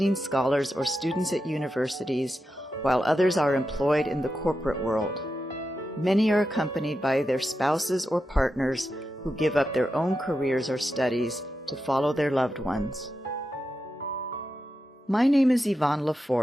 scholars, or students at universities, while others are employed in the corporate world. Many are accompanied by their spouses or partners who give up their own careers or studies to follow their loved ones. My name is Yvonne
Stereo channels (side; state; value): both; normal; correlation 0.88